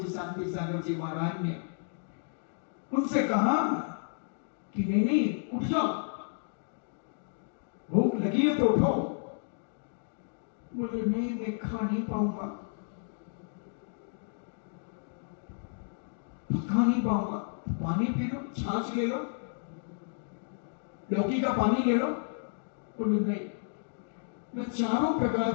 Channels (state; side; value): silent; right; digital silence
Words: शांति सागर जी महाराज ने उनसे कहा कि नहीं नहीं, उठ जाओ, भूख लगी है तो उठो। बोले नहीं, मैं खा नहीं पाऊंगा, खा नहीं पाऊंगा। पानी पी लो, छाछ ले लो, लौकी का पानी ले लो। बोले नहीं, मैं चारों